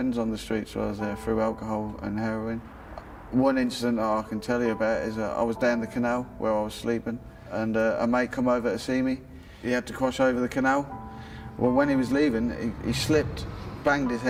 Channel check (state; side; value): identical; both; correlation 1.00